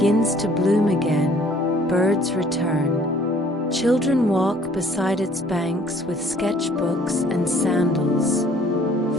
to bloom again. Birds return. Children walk beside its banks with sketchbooks and sandals.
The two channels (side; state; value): both; normal; correlation 0.57